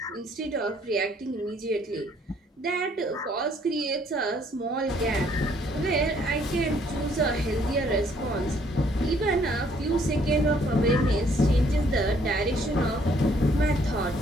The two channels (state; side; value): normal; both; correlation 0.64